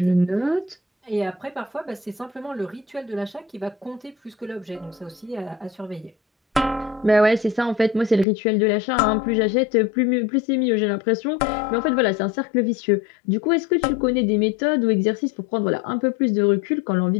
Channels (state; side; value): drops out; right; at 8.2 s